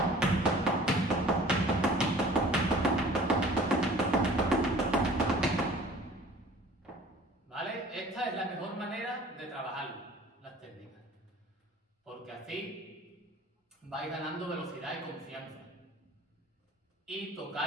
¿Vale? Esta es la mejor manera de trabajar las técnicas, porque así vais ganando velocidad y confianza y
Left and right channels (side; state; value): both; normal; correlation 0.48